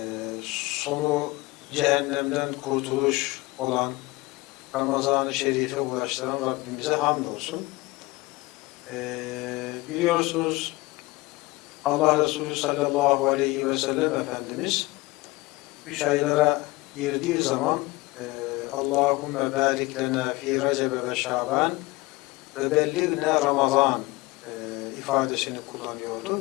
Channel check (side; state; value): right; quieter; 22.0 dB